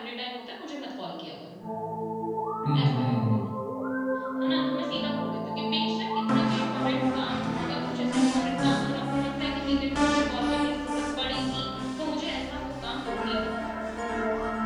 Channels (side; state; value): both; identical; correlation 1.00